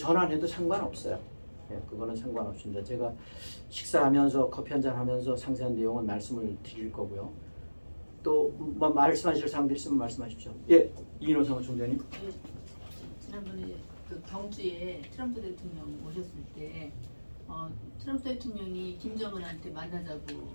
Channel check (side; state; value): both; inverted; correlation -1.00